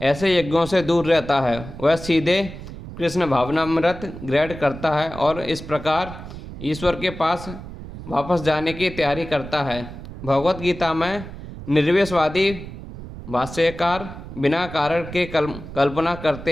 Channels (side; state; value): right; noise; rumble, 12 dB below the sound